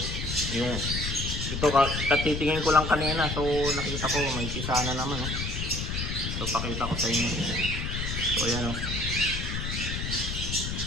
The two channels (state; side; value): noise; left; rumble, 4 dB below the sound